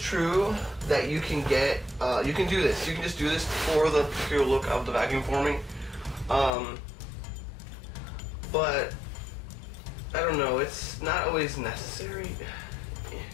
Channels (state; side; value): drops out; right; at 6.5 s